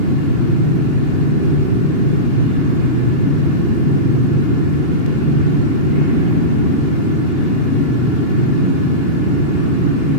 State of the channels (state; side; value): late; right; 2.8 ms